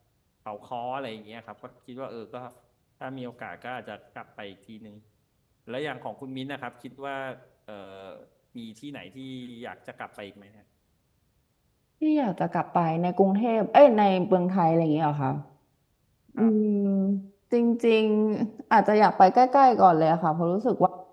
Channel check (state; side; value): identical; both; correlation 1.00